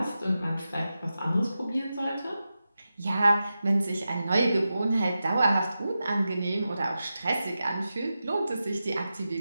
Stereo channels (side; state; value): both; inverted; correlation -0.91